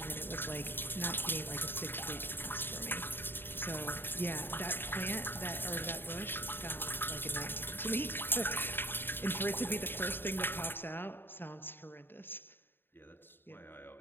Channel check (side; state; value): right; late; 0.099 ms